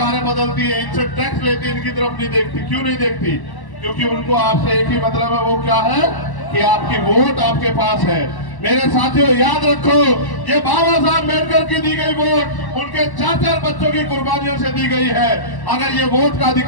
बदलती है, इनसे टैक्स लेती है, इनकी तरफ नहीं देखती, क्यों नहीं देखती? क्योंकि उनको आपसे एक ही मतलब है, वो क्या है कि आपकी वोट आपके पास है। मेरे साथियों याद रखो, ये बाबा साहब अम्बेडकर की दी गई वोट उनके 4-4 बच्चों की कुर्बानियों से दी गई है। अगर ये वोट का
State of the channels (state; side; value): late; right; 1.1 ms